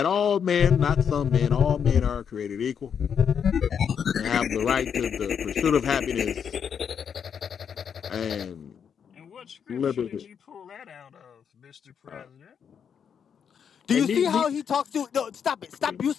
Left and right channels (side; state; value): right; quieter; 7.5 dB